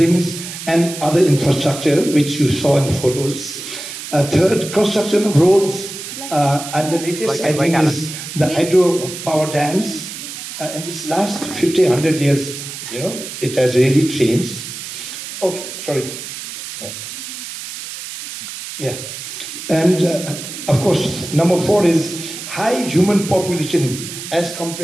and other infrastructure, which you saw in the photos. Third, construction of roads, and the latest, I think, is the hydropower dams. In this last 50, 100 years, it has really changed. Oh, sorry. Yeah. And of course, number four is high human population as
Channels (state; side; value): noise; right; hiss, 9 dB below the sound